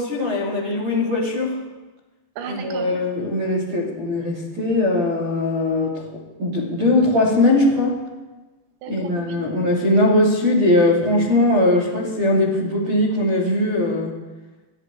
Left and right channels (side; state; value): left; late; 17 ms